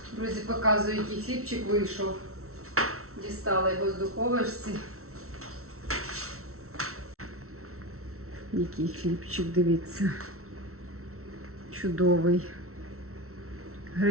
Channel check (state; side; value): late; left; 0.63 ms